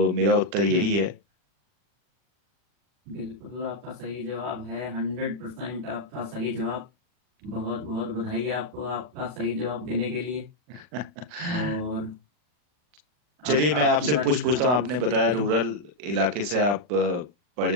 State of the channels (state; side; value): late; left; 40 ms